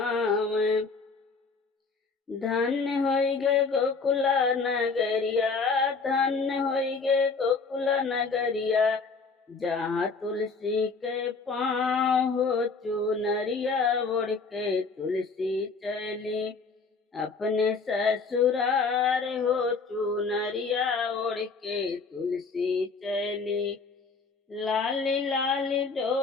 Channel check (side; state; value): right; quieter; 4.5 dB